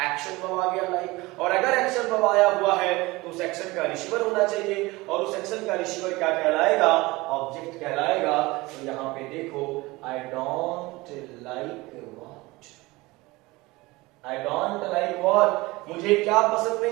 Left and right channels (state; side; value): quieter; left; 21.7 dB